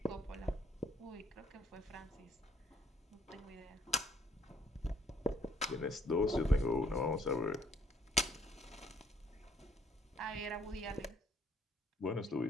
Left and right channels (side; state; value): both; normal; correlation 0.64